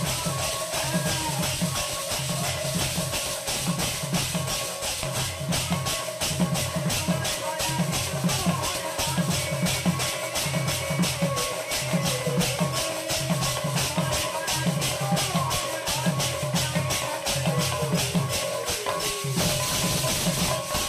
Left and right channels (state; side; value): identical; both; correlation 1.00